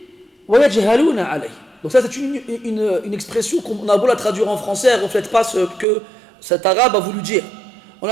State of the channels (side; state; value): left; drops out; at 5.9 s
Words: ويجهلون عليه. Donc ça c'est une expression qu'on a beau la traduire en français, elle ne reflète pas ce que cet arabe a voulu dire. On